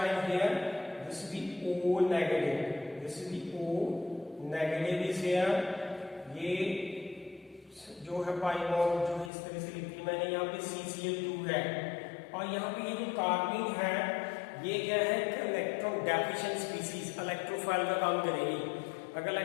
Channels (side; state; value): right; drops out; at 9.3 s